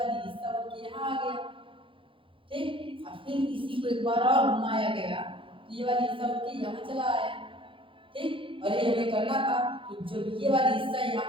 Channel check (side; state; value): left; late; 0.25 ms